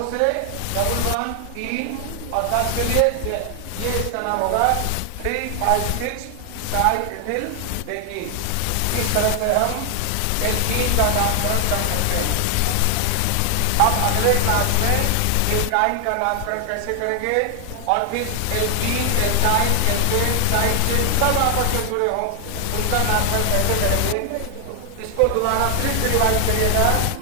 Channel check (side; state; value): both; different; correlation 0.00